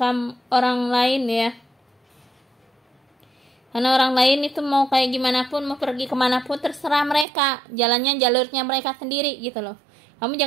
orang lain, ya. Karena orang lain itu mau kayak gimana pun, mau pergi kemana pun, terserah mereka, jalurnya mereka sendiri, gitu loh. Kamu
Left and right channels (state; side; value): drops out; left; at 7.2 s